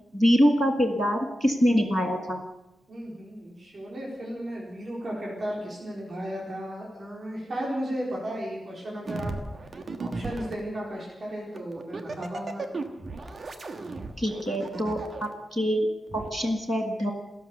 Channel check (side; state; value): both; normal; correlation 0.90